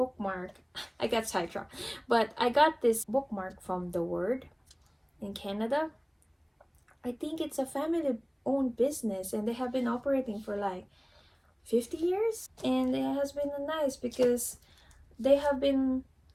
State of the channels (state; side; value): identical; both; correlation 1.00